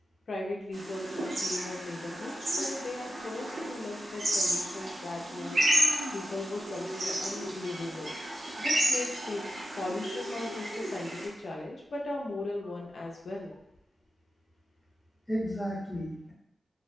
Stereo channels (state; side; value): normal; both; correlation 0.91